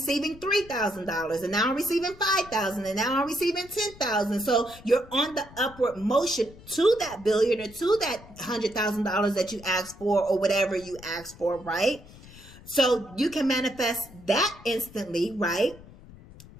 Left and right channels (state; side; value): noise; left; rumble, 20 dB below the sound